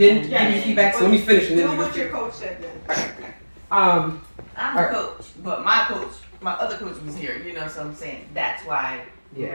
give me feedback? So let me finish and then do what your coach said then. I'm a coach, but my other coach was here, so I'm saying that's why we're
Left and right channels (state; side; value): inverted; both; correlation -1.00